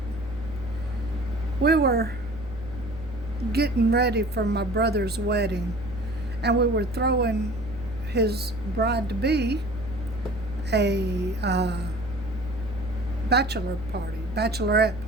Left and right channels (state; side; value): noise; right; hum, 17 dB below the sound